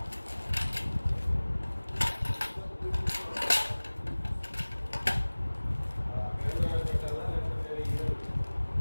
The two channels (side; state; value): both; inverted; correlation -1.00